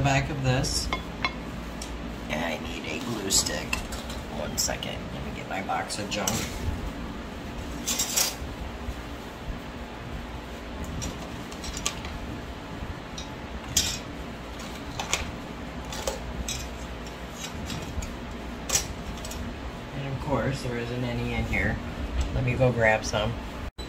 back of this. And I need a glue stick. 1 second. Let me get my box of junk. There isn't any in here. Let me go grab some.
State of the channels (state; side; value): identical; both; correlation 1.00